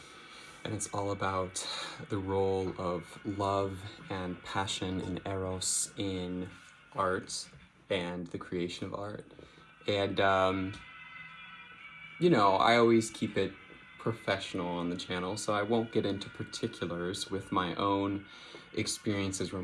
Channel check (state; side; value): identical; both; correlation 1.00